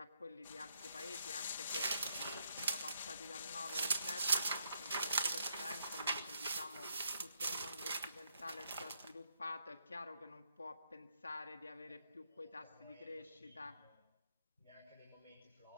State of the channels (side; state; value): both; inverted; correlation -0.76